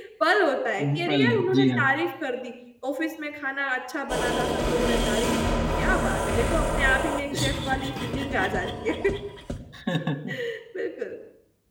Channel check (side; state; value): both; identical; correlation 1.00